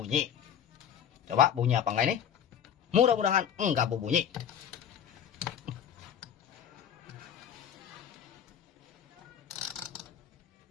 Coba bunyi apa enggak ini? Mudah-mudahan enggak berbunyi.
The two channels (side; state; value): right; quieter; 8.9 dB